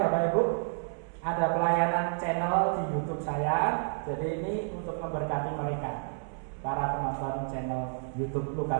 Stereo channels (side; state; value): left; silent; 58 dB below the other